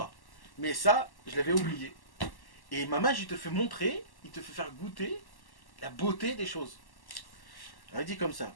Mais ça, je l'avais oublié. Et Mamaj, il te fait montrer, il te fait faire goûter la beauté des choses. Alors, il dit comme ça.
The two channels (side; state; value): right; late; 1.1 ms